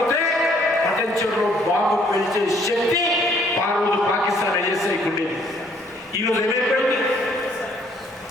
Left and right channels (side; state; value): both; normal; correlation 0.63